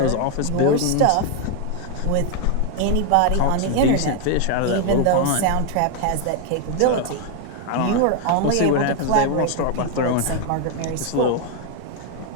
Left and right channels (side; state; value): both; different; correlation 0.01